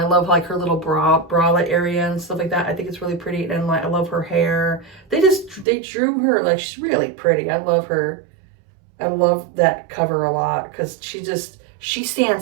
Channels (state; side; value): drops out; left; at 5.7 s